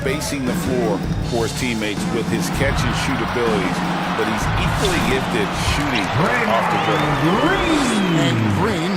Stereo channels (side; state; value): both; identical; correlation 1.00